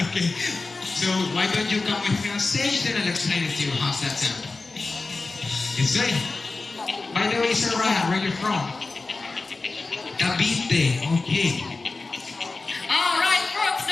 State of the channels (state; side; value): quieter; right; 3.6 dB